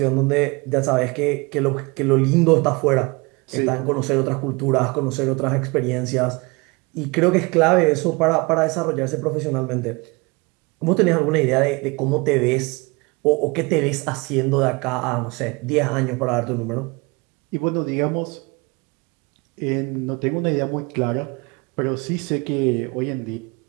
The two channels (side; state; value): left; quieter; 27.0 dB